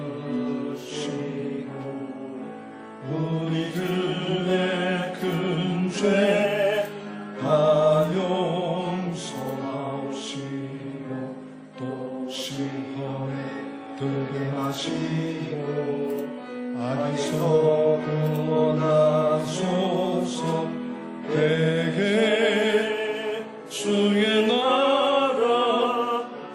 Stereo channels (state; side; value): identical; both; correlation 1.00